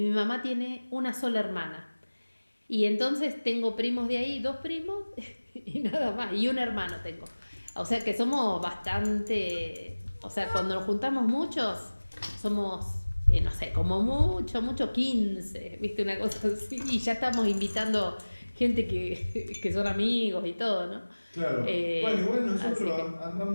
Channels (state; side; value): inverted; both; correlation -1.00